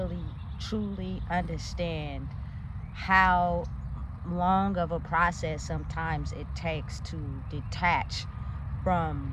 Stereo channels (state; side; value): identical; both; correlation 1.00